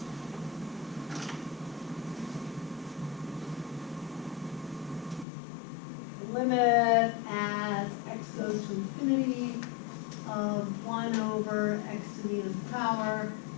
Limit as x goes to infinity of 1 over x to the nth power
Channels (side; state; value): right; drops out; at 5.2 s